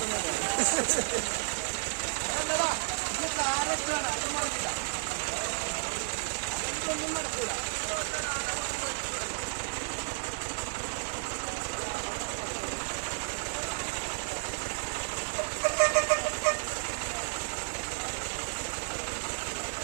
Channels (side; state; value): left; silent; digital silence